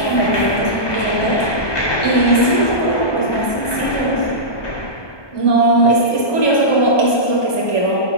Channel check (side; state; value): right; late; 1.2 ms